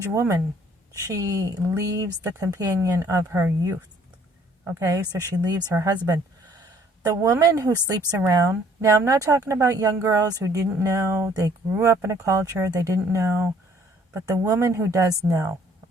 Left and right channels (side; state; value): both; normal; correlation 0.60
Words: woman, she leaves the companion of her youth. Okay, so she leaves her husband. The woman who sleeps around, now I'm not talking about young girls who didn't know, they grew up in a culture, they didn't know. But the woman who does know,